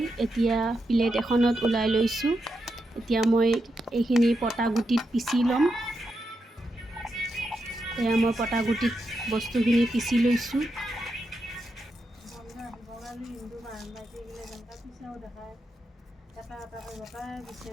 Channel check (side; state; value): both; normal; correlation 0.85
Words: এতিয়া প্লেট এখনত ওলাই লৈছোঁ। এতিয়া মই এইখিনি পটাগুটিত পিচি ল'ম। এয়া মই পটাগুটিত বস্তুখিনি পিচি লৈছোঁ।